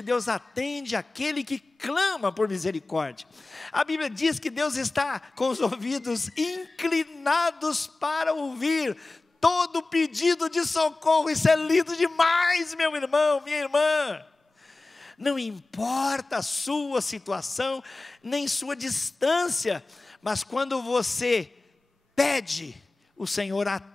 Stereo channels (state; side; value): quieter; right; 3.3 dB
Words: Deus atende aquele que clama por misericórdia. A Bíblia diz que Deus está com os ouvidos inclinados para ouvir todo pedido de socorro. Isso é lindo demais, meu irmão, minha irmã. Não importa a sua situação, nem sua distância, mas quando você pede, o Senhor